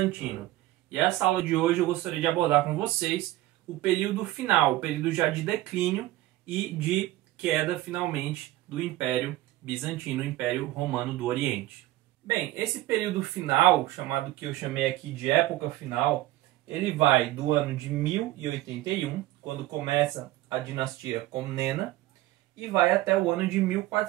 E essa aula de hoje eu gostaria de abordar com vocês o período final, o período já de declínio e de queda, finalmente, do Império Bizantino, o Império Romano do Oriente. Bem, esse período final, chamado que eu chamei aqui de época final, ele vai do ano de 1081, quando começa a dinastia Comnena, e vai até o ano de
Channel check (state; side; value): quieter; left; 16.2 dB